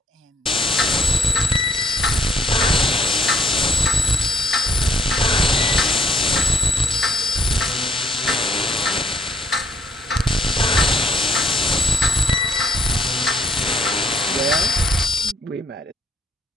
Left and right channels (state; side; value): normal; both; correlation 0.66